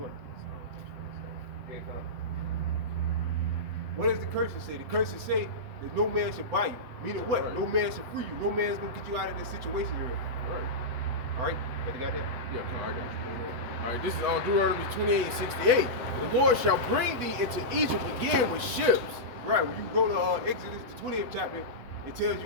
Yeah, come on. What does the curses say? The curses say that no man should buy you. Meaning what? Right. No man should free you. No man's gonna get you out of this situation you're in. Right. All right? You got that? Yeah, come on, I got you. All right, this is on Deuteronomy 28:68. The Lord shall bring thee into Egypt again with ships. Right. When you go to Exodus, the 20th chapter, it tells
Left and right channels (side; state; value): left; late; 8.0 ms